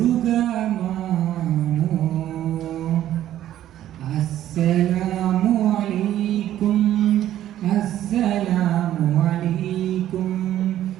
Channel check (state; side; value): quieter; left; 12.4 dB